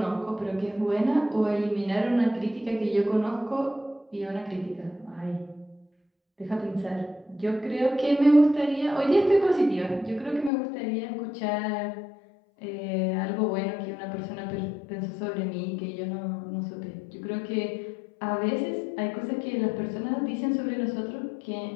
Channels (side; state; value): right; drops out; at 10.5 s